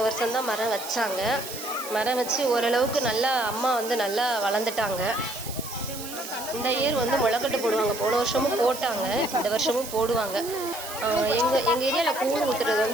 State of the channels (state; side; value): noise; right; hiss, 11 dB below the sound